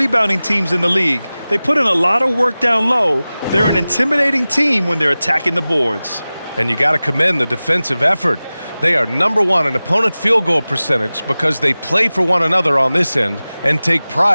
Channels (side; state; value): both; inverted; correlation -0.97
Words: teams in the league. They put in a lot of work down low. They're an intimidating team when they're attacking the boards. And you got to commend the defensive effort. They are #1 in opponent field goal percentage because they play for one another on this end and take